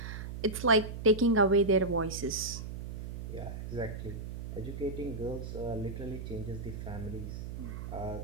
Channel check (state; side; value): noise; right; hum, 7 dB below the sound